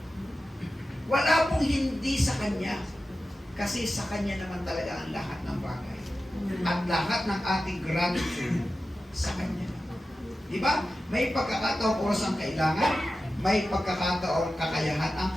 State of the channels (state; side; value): normal; both; correlation 0.93